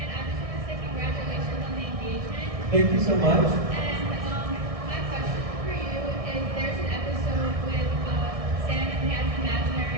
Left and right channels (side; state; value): left; late; 1.6 ms